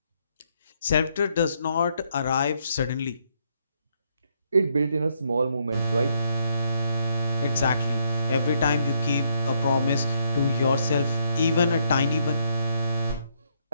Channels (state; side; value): inverted; both; correlation -0.73